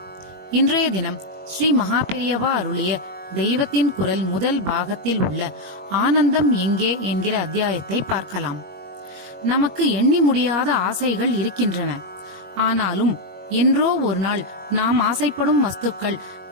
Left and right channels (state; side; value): late; left; 21 ms